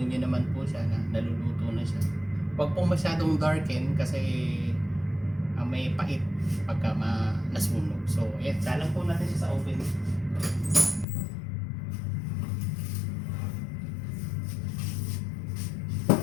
nyo naman po siya na naluluto na siya. Huwag pong masyadong darken kasi may pait pagka nasunog. So ayan, salang po natin siya sa oven.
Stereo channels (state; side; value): drops out; right; at 11.1 s